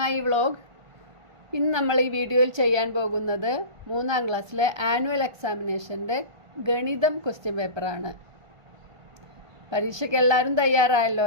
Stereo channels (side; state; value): left; late; 1.3 ms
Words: vlog. ഇന്ന് നമ്മൾ ഈ വീഡിയോയിൽ ചെയ്യാൻ പോകുന്നത് 3ാം ക്ലാസ്സിലെ ആനുവൽ എക്സാമിനേഷൻ്റെ ഗണിതം ക്വസ്റ്റ്യൻ പേപ്പറാണ്. പരീക്ഷയ്ക്ക് എല്ലാവരും